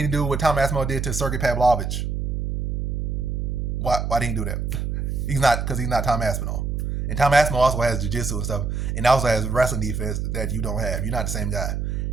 didn't do what Tom Aspinall did to Sergey Pavlovich? Why didn't he do that? Because he's not Tom Aspinall. And Tom Aspinall also has jiu-jitsu and stuff, and also has wrestling defense that you don't have. You're not the same guy.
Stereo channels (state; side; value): noise; right; hum, 2 dB below the sound